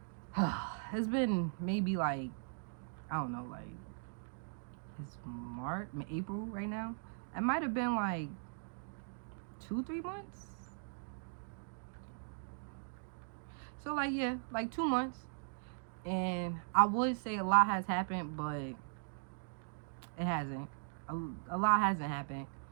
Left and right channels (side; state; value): left; silent; digital silence